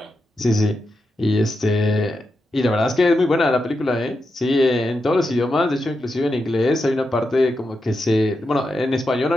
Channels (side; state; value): both; normal; correlation 0.87